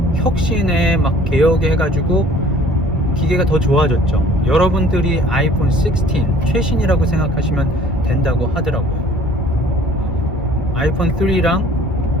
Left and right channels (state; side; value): normal; both; correlation 0.52